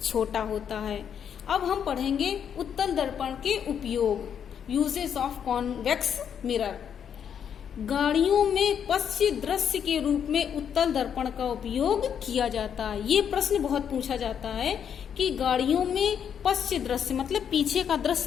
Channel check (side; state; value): right; quieter; 8.2 dB